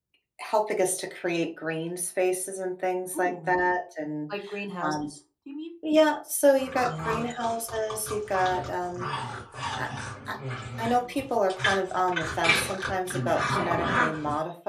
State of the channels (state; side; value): identical; both; correlation 1.00